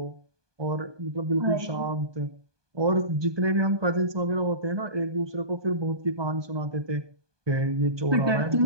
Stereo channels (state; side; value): late; left; 1.2 ms